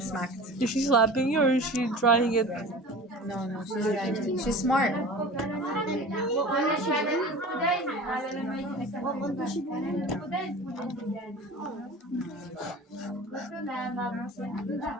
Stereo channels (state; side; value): normal; both; correlation 0.38